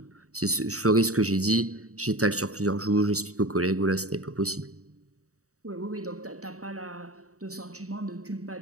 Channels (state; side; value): late; left; 0.65 ms